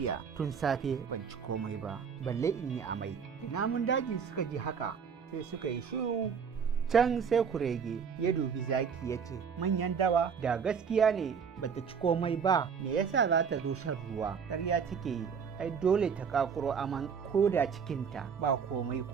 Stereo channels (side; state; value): left; quieter; 6.6 dB